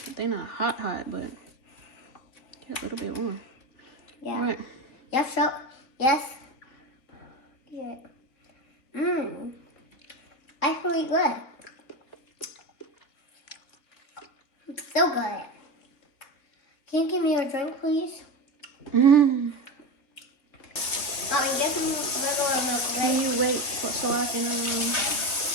they're not hot, but a little bit warm. Yeah. Right. Yes, so, yes. Yeah. That's really good. It's so good. Can you give me a drink, please? Mm. Mommy, get me regular milk, Can right? you wait so I can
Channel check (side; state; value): right; late; 3.6 ms